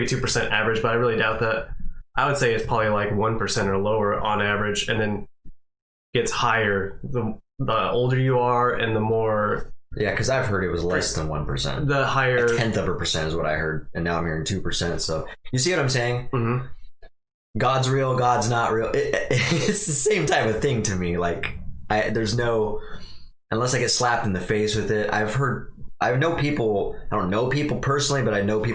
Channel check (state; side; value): identical; both; correlation 1.00